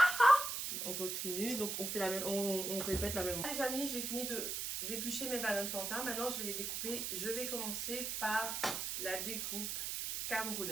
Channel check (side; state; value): right; noise; hiss, 2 dB below the sound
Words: on continue, donc on fait la même, on répète la même. Les amis, j'ai fini d'éplucher mes bananes plantains. Maintenant, je vais les découper. Je vais commencer par la découpe